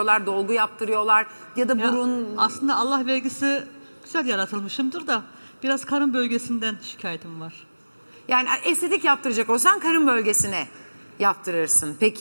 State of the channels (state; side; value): inverted; both; correlation -1.00